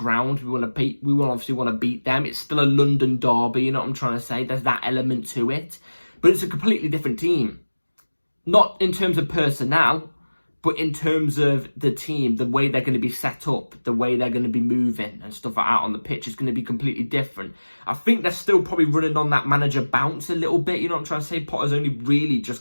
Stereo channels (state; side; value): inverted; both; correlation -1.00